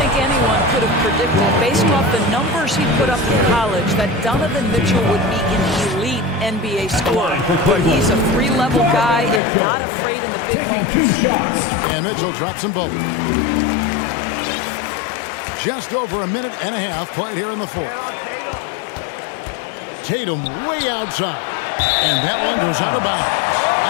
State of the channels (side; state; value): right; drops out; at 9.4 s